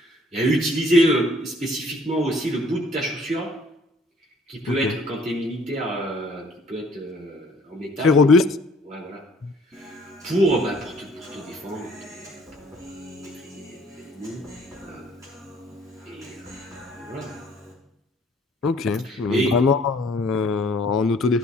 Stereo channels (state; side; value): normal; both; correlation 0.58